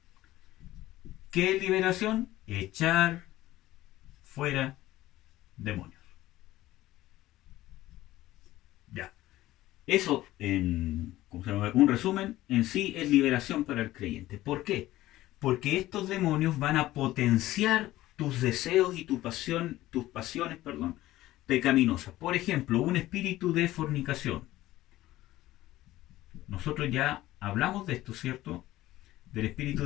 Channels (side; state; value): right; quieter; 15.9 dB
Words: ¿Qué es liberación? Echar fuera demonios. Ya. Eso, ¿cómo se llama?, un resumen, en sí es liberación para el creyente. ¿Por qué? Porque estos demonios van a potenciar tus deseos y tus pasiones, pecaminosas. Por ejemplo, un espíritu de fornicación. Nosotros ya hablamos de esto, ¿cierto? Del espíritu